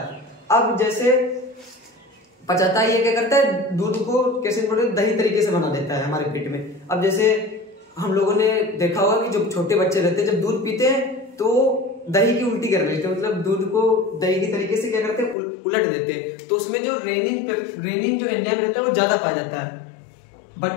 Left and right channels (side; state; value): right; drops out; at 15.4 s